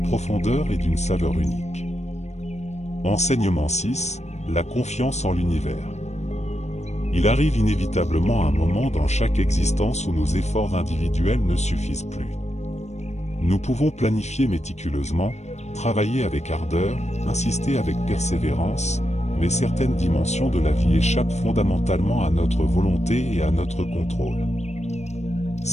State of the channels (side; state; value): right; late; 0.32 ms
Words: profondeur et d'une saveur unique. Enseignement 6, la confiance en l'univers. Il arrive inévitablement un moment dans chaque existence où nos efforts individuels ne suffisent plus. Nous pouvons planifier méticuleusement, travailler avec ardeur, insister avec persévérance, mais certaines dimensions de la vie échappent fondamentalement à notre volonté et à notre contrôle.